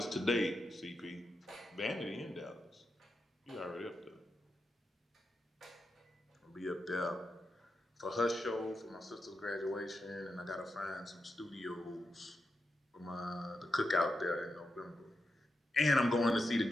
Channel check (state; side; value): normal; both; correlation 0.87